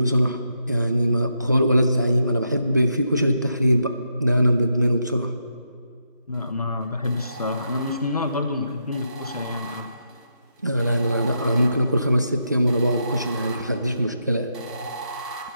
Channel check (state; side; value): inverted; both; correlation -0.81